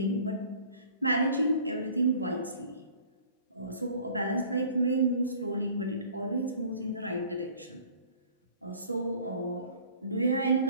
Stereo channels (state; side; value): inverted; both; correlation -0.51